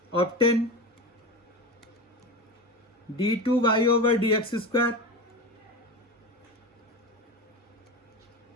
obtain d2y over d x square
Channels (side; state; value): both; normal; correlation 0.24